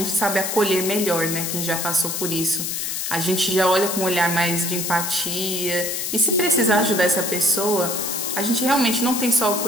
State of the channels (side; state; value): left; noise; hiss, 2 dB below the sound